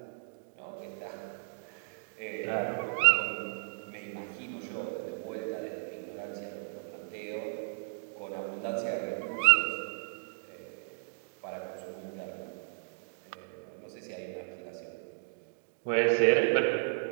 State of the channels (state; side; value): silent; left; digital silence